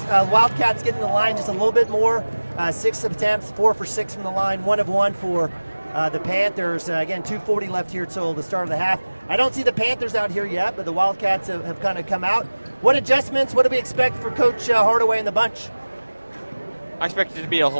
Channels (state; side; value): inverted; both; correlation -1.00